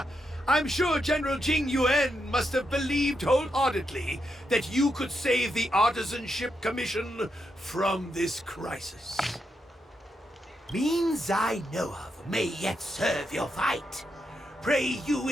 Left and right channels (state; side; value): normal; both; correlation 0.83